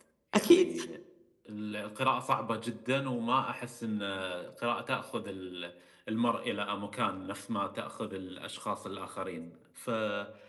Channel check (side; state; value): both; identical; correlation 1.00